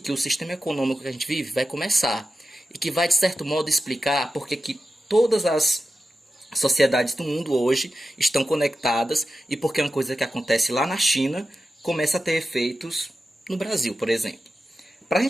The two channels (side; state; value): both; normal; correlation 0.91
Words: o sistema econômico que a gente vive vai começar e que vai, de certo modo, explicar porque que todas as sociedades do mundo hoje estão conectadas e porque uma coisa que acontece lá na China começa a ter efeitos no Brasil, por exemplo. Para a